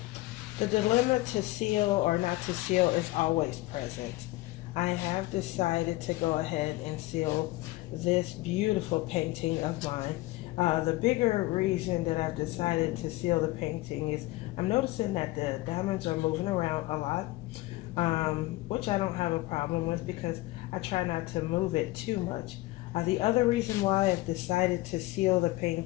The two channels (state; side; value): quieter; right; 19.3 dB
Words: the dilemma to seal or not to seal is always present. I have decided to go ahead and seal this beautiful painting of mine. The bigger reason that I've decided to seal the painting is I'm noticing that the diamonds are moving around a lot, which I don't have a problem with because I try not to move it too much. The other reason why I've decided to seal the